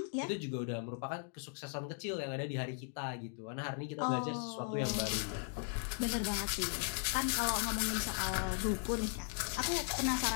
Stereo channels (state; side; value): silent; right; 53 dB below the other